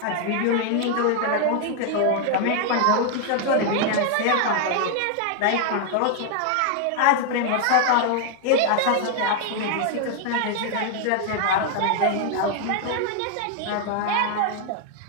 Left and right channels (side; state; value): both; different; correlation 0.00